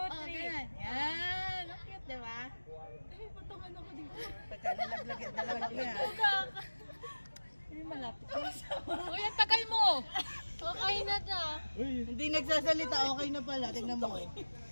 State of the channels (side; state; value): both; inverted; correlation -1.00